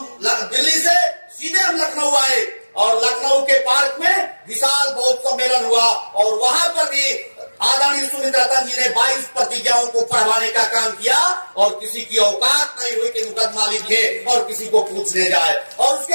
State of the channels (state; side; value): inverted; both; correlation -1.00